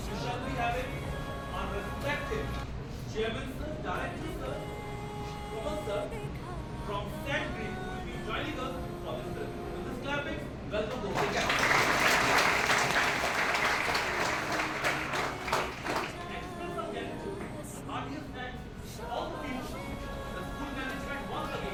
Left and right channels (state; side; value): identical; both; correlation 1.00